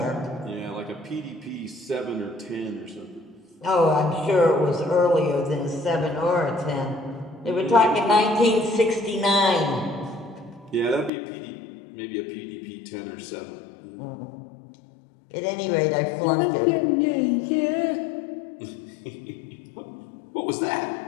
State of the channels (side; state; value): right; drops out; at 11.1 s